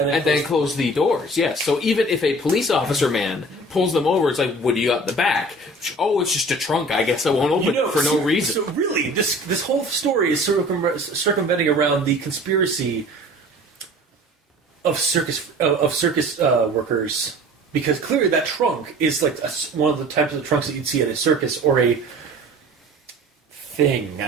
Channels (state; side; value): normal; both; correlation 0.44